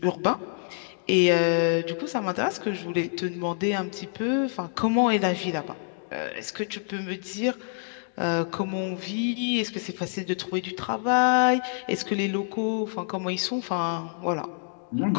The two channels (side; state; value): right; silent; digital silence